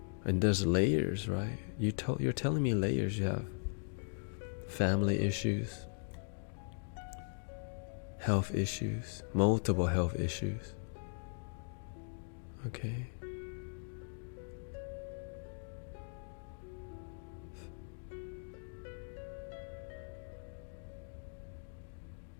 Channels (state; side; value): silent; right; digital silence